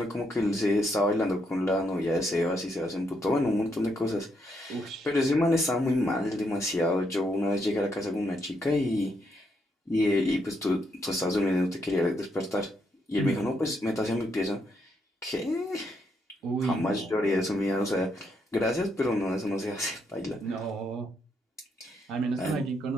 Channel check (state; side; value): normal; both; correlation 0.77